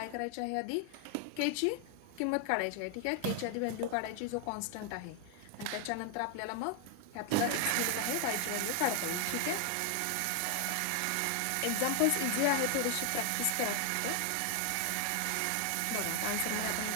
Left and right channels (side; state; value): both; different; correlation 0.00